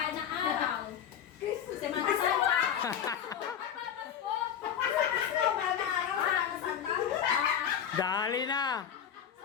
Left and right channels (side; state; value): right; quieter; 8.9 dB